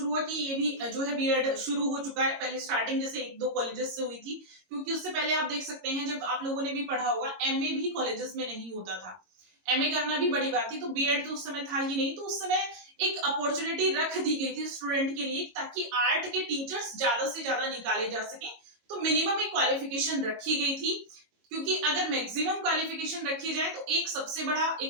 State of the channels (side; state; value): left; late; 22 ms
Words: हुआ कि ये भी जो है बीएड शुरू हो चुका है, पहले स्टार्टिंग जैसे एक दो कॉलेजेस से हुई थी, क्योंकि उससे पहले आप देख सकते हैं जब आप लोगों ने भी पढ़ा होगा एमए भी कॉलेजेस में नहीं होता था, एमए करना भी बड़ी बात थी, तो बीएड तो उस समय था ही नहीं, तो उस समय एक अपॉर्चुनिटी रख दी गई थी स्टूडेंट के लिए ताकि आर्ट के टीचर्स ज्यादा से ज्यादा निकाले जा सके, तो मिनिमम एक क्वालिफिकेशन रखी गई थी, क्योंकि अगर मैक्सिमम क्वालिफिकेशन रखी जाए तो एक सबसे बड़ा